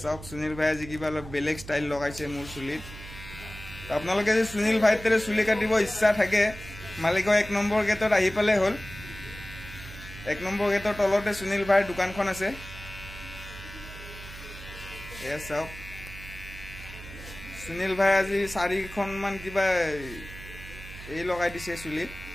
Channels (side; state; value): right; noise; hum, 14 dB below the sound